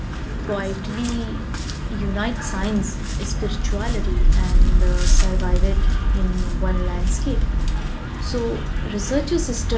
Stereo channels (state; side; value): identical; both; correlation 1.00